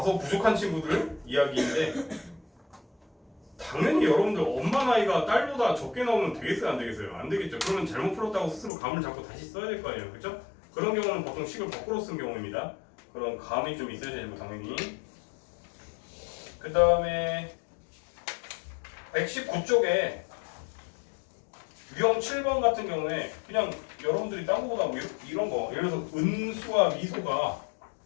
부족한 친구들 이야기인데 당연히 여러분들 엄마 나이가 딸보다 적게 나오면 되겠어요 안 되겠어요? 안 되겠죠. 그러면 잘못 풀었다고 스스로 감을 잡고 다시 써야 될 거 아니에요, 그렇죠? 그런 경우는 보통 식을 거꾸로 쓴 경우입니다. 그런 감이 좀 있어야 되고 당연히. 그 다음에 119쪽에 유형 7번 같은 경우에 그냥 여러분들이 딴 거보다 뭐 이런 거 예를 들어서 은수와 미소가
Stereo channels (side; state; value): right; drops out; at 8.7 s